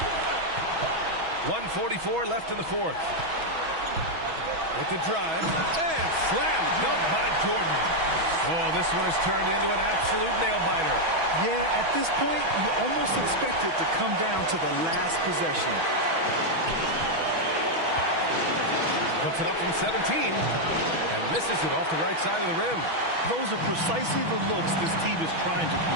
1:44 left in the fourth. With the drive. And slam dunk by Jordan. Oh, this one has turned into an absolute nail-biter. Yeah, at this point, you almost expect it to come down to the last possession. Puts it up from 17 and misses it off the right side of the rim. Those are precisely the looks this team is trying to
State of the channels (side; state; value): left; late; 6.2 ms